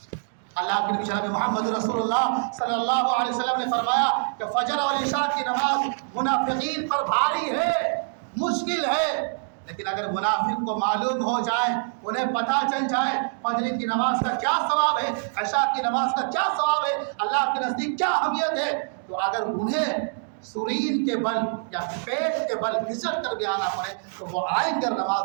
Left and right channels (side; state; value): left; silent; digital silence